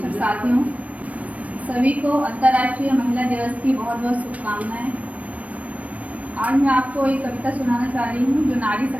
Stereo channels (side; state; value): left; late; 0.067 ms